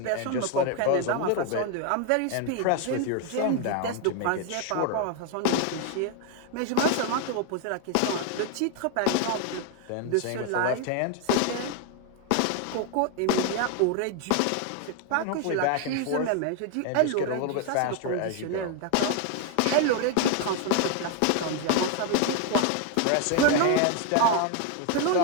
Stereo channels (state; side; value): different; both; correlation 0.01